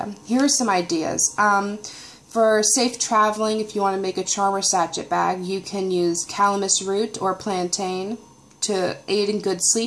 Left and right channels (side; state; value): both; identical; correlation 1.00